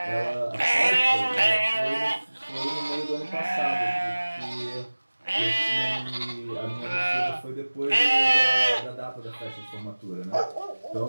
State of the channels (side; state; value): both; inverted; correlation -1.00